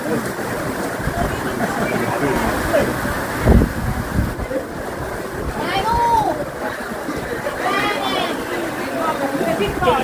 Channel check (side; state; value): both; identical; correlation 1.00